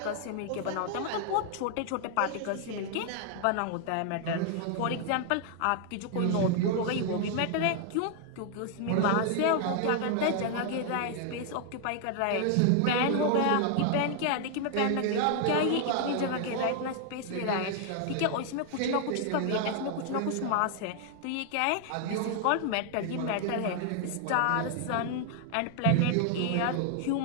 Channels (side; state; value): both; different; correlation 0.00